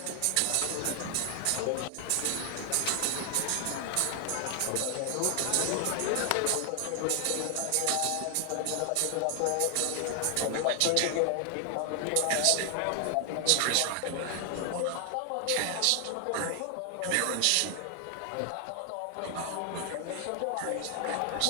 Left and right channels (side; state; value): both; different; correlation 0.00